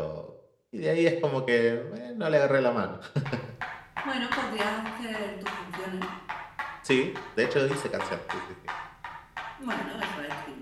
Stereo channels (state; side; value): identical; both; correlation 1.00